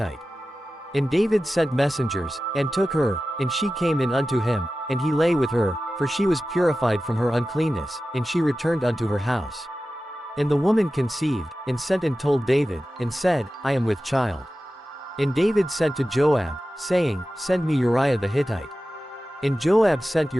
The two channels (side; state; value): both; normal; correlation 0.94